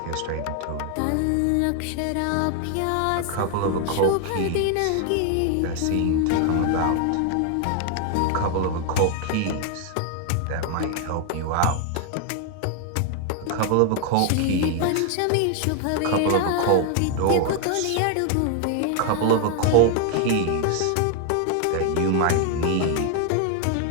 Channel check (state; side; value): different; both; correlation 0.00